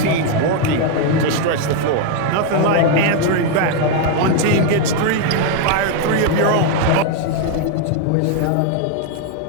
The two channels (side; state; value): both; different; correlation 0.01